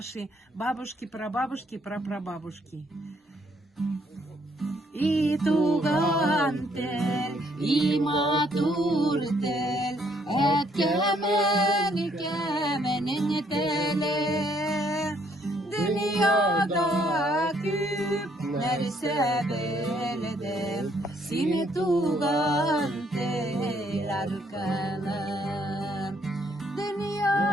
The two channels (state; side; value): normal; both; correlation 0.68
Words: бабушки, прабабушки, прапрабабушки. И туган тел, и матур тел, kemenin tele. Dünyada küpler sebelede, seni tugan tel arkanan.